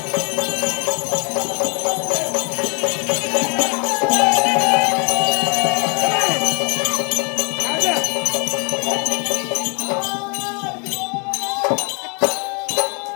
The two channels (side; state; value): right; quieter; 36.0 dB